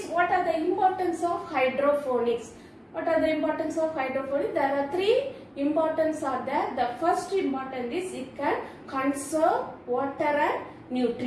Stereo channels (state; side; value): identical; both; correlation 1.00